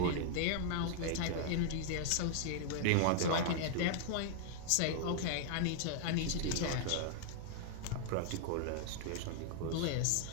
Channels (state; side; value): different; both; correlation 0.00